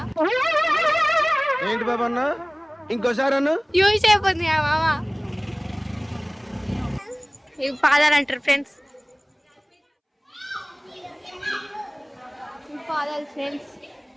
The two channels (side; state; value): both; identical; correlation 1.00